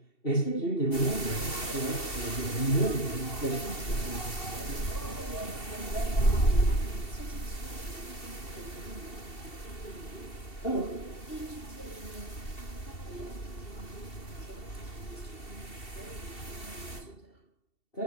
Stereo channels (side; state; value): right; late; 2.7 ms